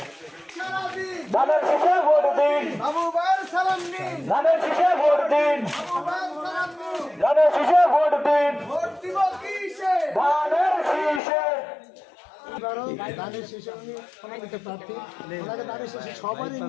ধানের শীষে ভোট দিন। বাবু ভাইয়ের সালাম নিন। ধানের শীষে ভোট দিন। বাবু ভাইয়ের সালাম নিন। ধানের শীষে ভোট দিন। ভোট দিব কিসে? ধানের শীষে। এবারও ধানের শেষে উনি সমন্বিত প্রার্থী ওনাকে ধানের শেষে সবারই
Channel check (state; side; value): drops out; right; at 11.2 s